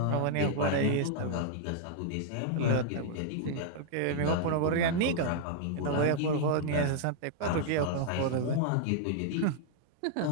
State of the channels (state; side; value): different; both; correlation -0.01